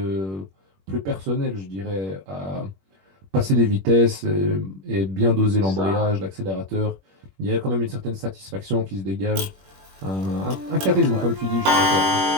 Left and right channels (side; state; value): left; late; 21 ms